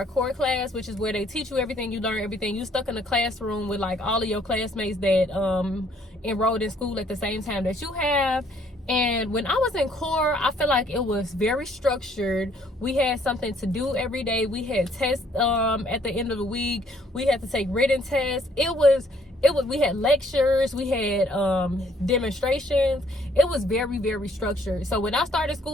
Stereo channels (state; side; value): normal; both; correlation 0.64